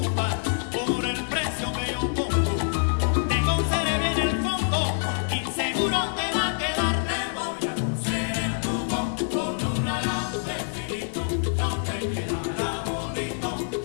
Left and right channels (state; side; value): silent; right; digital silence